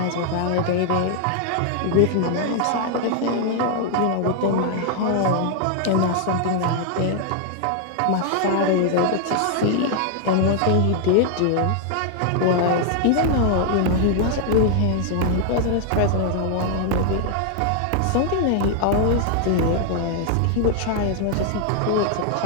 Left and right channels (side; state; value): both; different; correlation 0.00